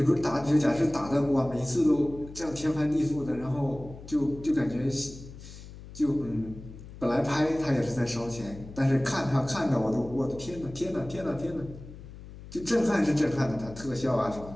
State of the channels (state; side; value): noise; left; hum, 15 dB below the sound